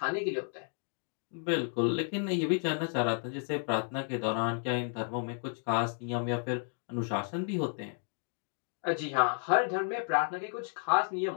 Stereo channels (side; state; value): right; silent; 56 dB below the other